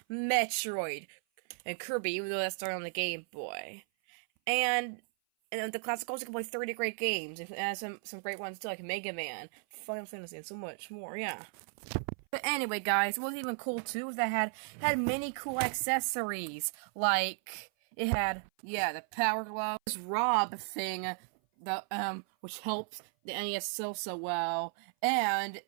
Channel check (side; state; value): left; silent; 55 dB below the other